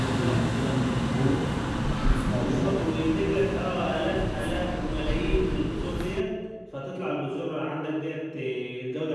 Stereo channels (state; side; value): identical; both; correlation 1.00